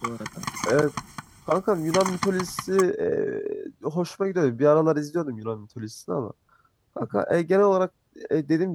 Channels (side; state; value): both; identical; correlation 1.00